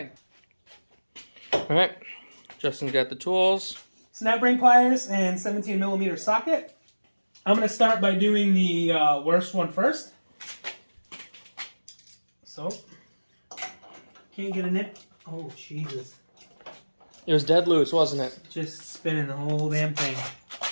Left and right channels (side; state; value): both; inverted; correlation -1.00